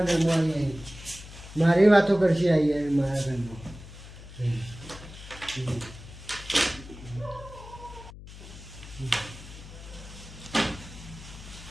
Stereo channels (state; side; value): noise; left; hum, 15 dB below the sound